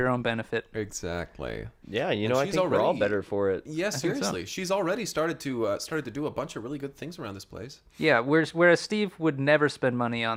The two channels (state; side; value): identical; both; correlation 1.00